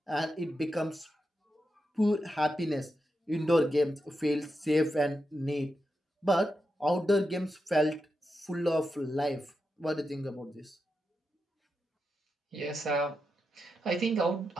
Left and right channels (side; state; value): both; normal; correlation 0.87